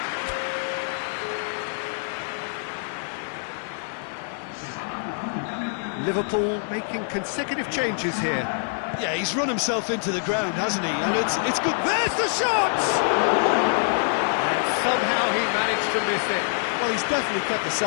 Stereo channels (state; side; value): silent; right; digital silence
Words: Liverpool making consecutive changes here. Yeah, he's run himself into the ground, hasn't he? And it's good. There's the shot! And somehow he managed to miss it. Well, he's definitely kept the